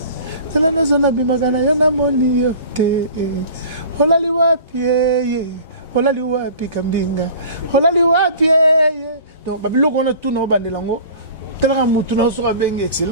Tela na zona bimakana yana moni yote holali wapi holali wapi Kambinga holali wapi donc babiloko on a tout na bandela ngo tela mutu na so bengi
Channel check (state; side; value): inverted; both; correlation -0.42